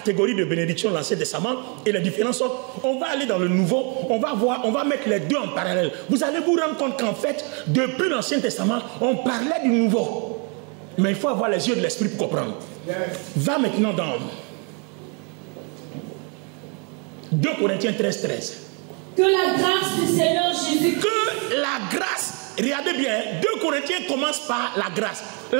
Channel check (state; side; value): quieter; left; 35.5 dB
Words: de bénédiction de l'Ancien Testament et les différences. On va aller dans le Nouveau, on va mettre les deux en parallèle. Vous allez vous rendre compte qu'en fait, depuis l'Ancien Testament, on parlait du Nouveau. Mais il faut avoir les yeux de l'Esprit pour comprendre. Va maintenant dans 2 Corinthiens 13. Que la grâce du Seigneur Jésus. Que la grâce, regardez bien, 2 Corinthiens commence par la grâce.